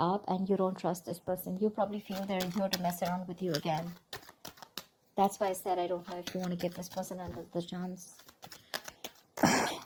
and you don't trust this person. You probably feel they're here to mess around with you again. That's why I said I don't know if you want to give this person another chance.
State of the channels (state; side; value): identical; both; correlation 1.00